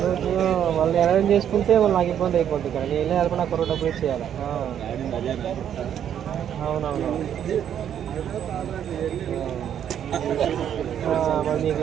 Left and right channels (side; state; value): left; quieter; 9.5 dB